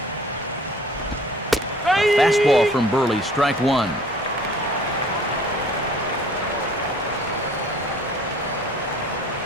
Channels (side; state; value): both; normal; correlation 0.51